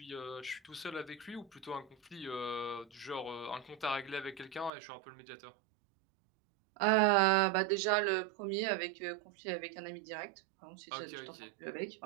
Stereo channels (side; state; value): left; drops out; at 4.7 s